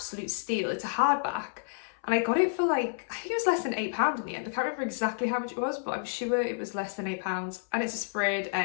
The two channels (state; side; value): silent; right; 58 dB below the other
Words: steal. It's a hardback, and I got it for like, I think it was less than £8 in the end. I can't remember exactly how much it was, but I'm sure it was less than £8, and it's a sprayed